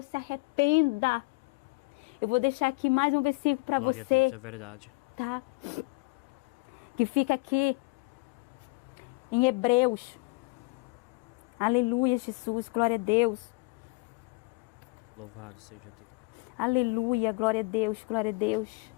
se arrependa. Eu vou deixar aqui mais um versículo para você. Glória a Deus, é verdade. Tá? Que fica aqui em Hebreus. Aleluia, Jesus, glória a Deus. Louvado seja Deus. Aleluia, glória a Deus, glória a Deus.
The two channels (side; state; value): right; quieter; 27.6 dB